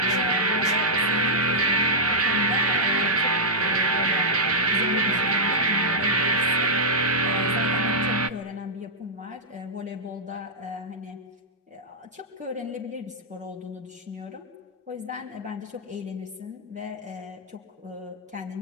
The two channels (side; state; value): both; normal; correlation -0.09